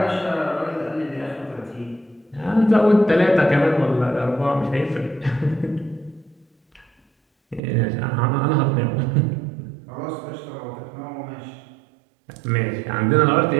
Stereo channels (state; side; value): drops out; left; at 7.6 s